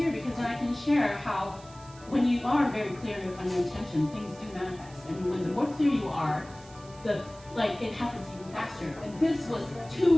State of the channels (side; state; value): right; noise; hiss, 23 dB below the sound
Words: because then I can share how when you are very clear on your intention, things do manifest. And when the more clear you are, it happens even faster. And this was